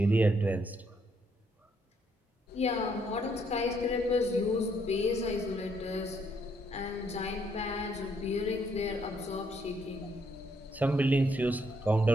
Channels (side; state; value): both; normal; correlation 0.72